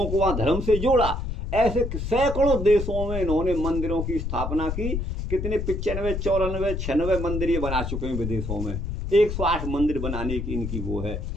को वहाँ धर्म से जोड़ा। ऐसे सैकड़ों देशों में इन्होंने मंदिरों की स्थापना की। कितने 95, 94, 96 मंदिर ये बना चुके हैं विदेशों में। 108 मंदिर बनाने की इनकी वो है।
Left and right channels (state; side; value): noise; left; rumble, 4 dB below the sound